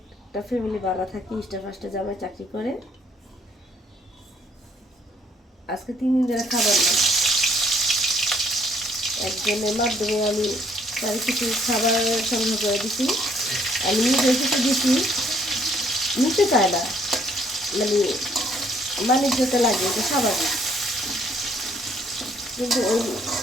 একটা ফ্যামিলি ভাড়া থাকি, ইস্টা ফার্স্টে জামাই চাকরি করে। আজকে 3 দিন ধরে খাবার না। একজনের মাধ্যমে আমি তার কিছু খাবার সংগ্রহ করে দিছি। আমি নিজে এসে দিছি, নিতে চায় না, মানে বাণিজ্যতে লাগে, এটা স্বাভাবিক। কিন্তু ওই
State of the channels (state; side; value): normal; both; correlation 0.65